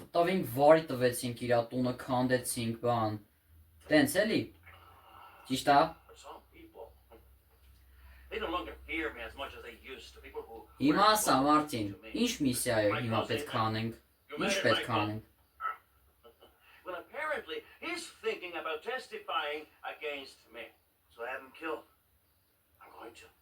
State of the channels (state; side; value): identical; both; correlation 1.00